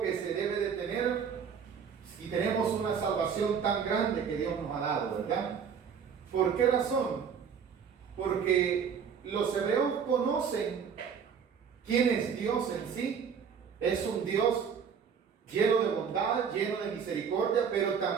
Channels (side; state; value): left; quieter; 6.9 dB